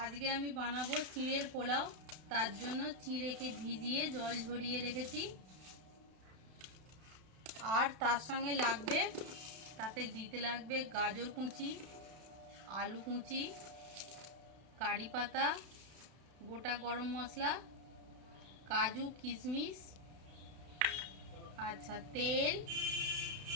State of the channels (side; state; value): left; late; 32 ms